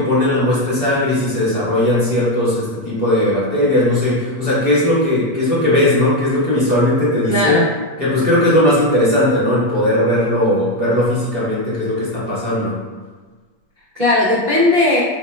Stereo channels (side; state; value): left; late; 8.4 ms